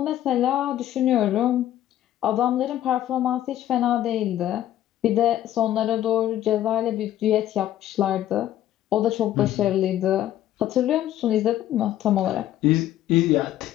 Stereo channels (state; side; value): quieter; right; 12.5 dB